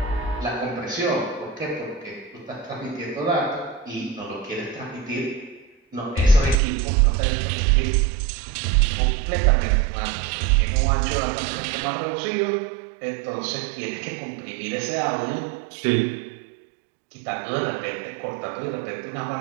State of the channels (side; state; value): left; drops out; at 6.6 s